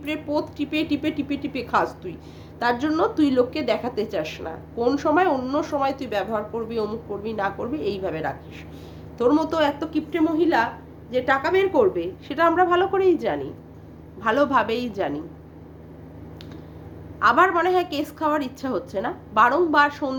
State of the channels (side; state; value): both; identical; correlation 1.00